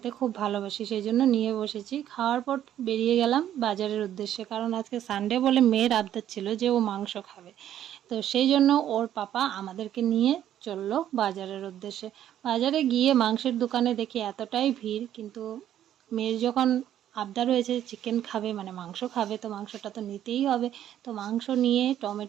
খুব ভালোবাসি, সেই জন্য নিয়ে বসেছি। খাওয়ার পর বেরিয়ে গেলাম বাজারের উদ্দেশ্যে, কারণ আজকে সানডে বলে মেয়ের আবদার ছিল যে ও মাংস খাবে। তো সেই জন্য ওর পাপা আমাদেরকে নিয়ে চললো বাজারের উদ্দেশ্যে। বাজারে গিয়ে মাংসের দোকানে দেখি এতটাই ভিড়, কিন্তু মেয়ের যখন আবদার হয়েছে চিকেন খাবে, মানে মাংস খাবে, তো মাংসটা তো নিতেই হবে। তো মাংস নিয়ে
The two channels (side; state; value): left; quieter; 11.2 dB